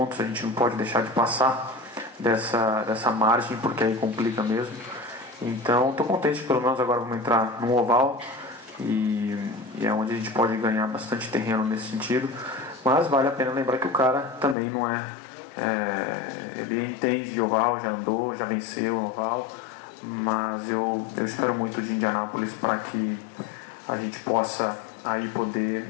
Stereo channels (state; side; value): drops out; right; at 14.6 s